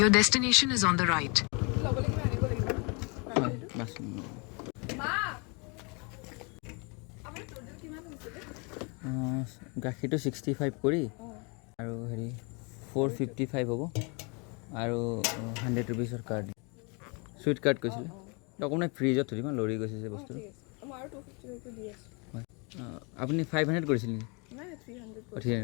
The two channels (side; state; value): right; quieter; 32.0 dB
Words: destination is on the right. হয় bus গাখীৰটো 65 কৰি আৰু হেৰি 455 হ'ব আৰু 100 ৰুপিছৰ কাৰ্ড চুইট কাৰ্ড কৈছিলে অকণমান ফ্ৰিজত থৈ দিম লৰি গৈছে যে বস্তুটো হয় আপুনি 500 কৰিছিল নেকি